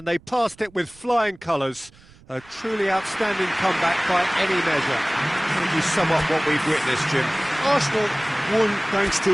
they passed it with flying colours. A truly outstanding comeback by any measure. How would you sum up what we've witnessed, Jim? Arsenal won thanks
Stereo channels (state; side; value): noise; right; rumble, 26 dB below the sound